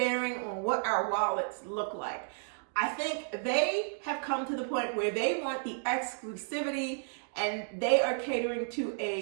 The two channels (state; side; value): silent; left; digital silence